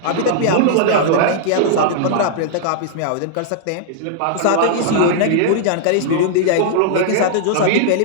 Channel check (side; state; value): both; different; correlation -0.01